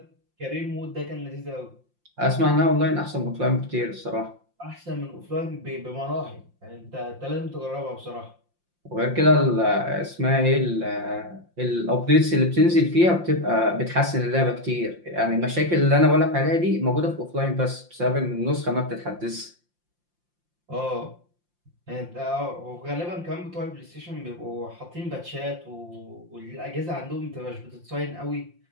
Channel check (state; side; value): late; left; 5.7 ms